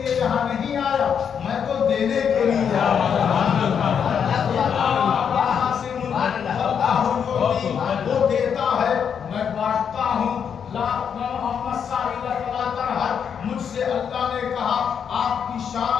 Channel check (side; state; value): right; quieter; 7.5 dB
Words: یہاں نہیں آیا، میں تو دینے کے لیے آیا. وہ دیتا ہے میں بانٹتا ہوں. مجھ سے اللہ نے کہا آپ کی